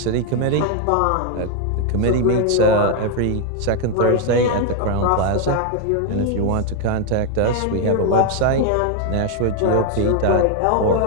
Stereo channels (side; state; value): both; different; correlation 0.00